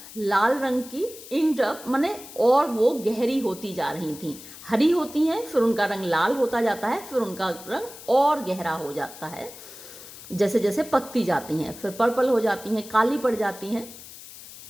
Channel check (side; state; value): left; noise; hiss, 16 dB below the sound